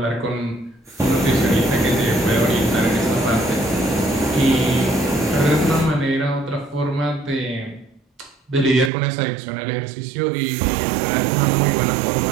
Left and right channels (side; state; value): left; drops out; at 8.9 s